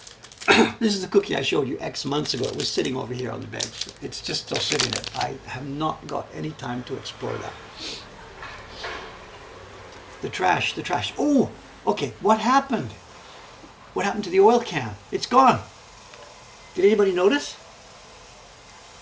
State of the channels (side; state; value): both; identical; correlation 1.00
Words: This is the cookie I showed you X months ago. It was sitting over here on the bench. It's just still sitting there. I have not got any time to explore that. The trash. Oh, okay, what happened? What happened to the oil can? It's gone. Did anybody notice?